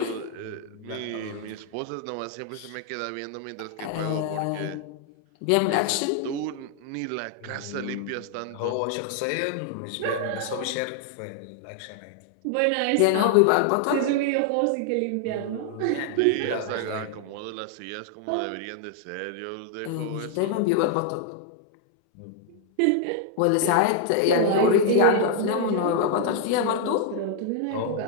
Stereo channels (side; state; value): both; different; correlation 0.00